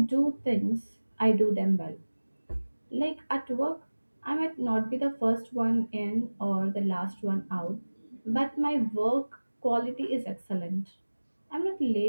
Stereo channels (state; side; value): inverted; both; correlation -1.00